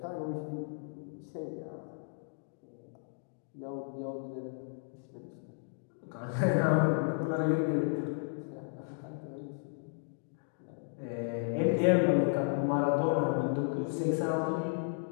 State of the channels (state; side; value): silent; right; digital silence